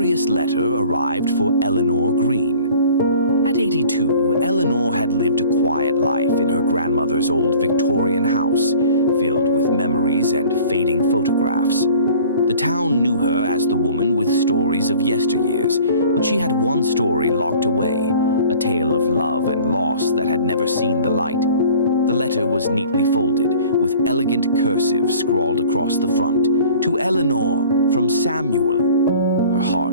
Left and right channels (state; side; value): inverted; both; correlation -0.48